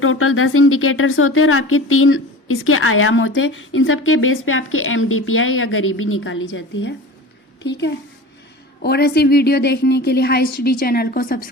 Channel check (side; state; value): both; normal; correlation 0.35